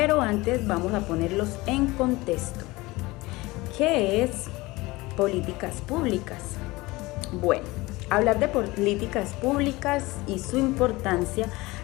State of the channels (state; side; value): quieter; right; 21.3 dB